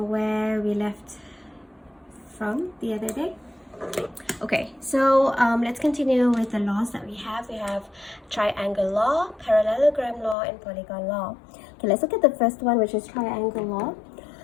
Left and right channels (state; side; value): drops out; right; at 10.4 s